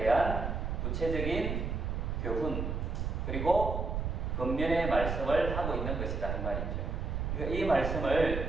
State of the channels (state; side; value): noise; right; rumble, 2 dB below the sound